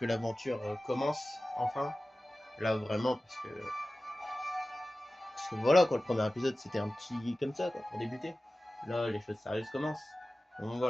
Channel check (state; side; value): normal; both; correlation 0.96